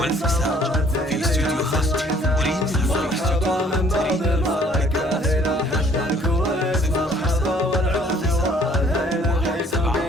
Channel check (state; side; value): normal; both; correlation 0.58